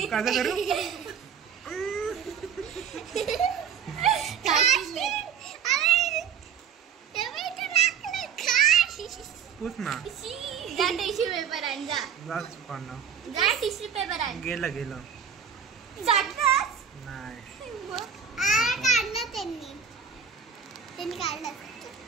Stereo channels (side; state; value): left; quieter; 7.3 dB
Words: कसं करू? पूछ ना. जा टिश्यू पेपर आण. जा टिश्यू पेपर आण. गेलं जातच नाही. काढलं त्यांनी काढलं.